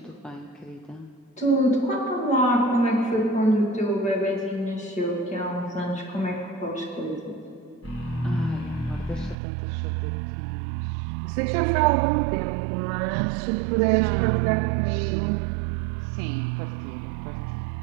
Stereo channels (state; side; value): drops out; left; at 9.3 s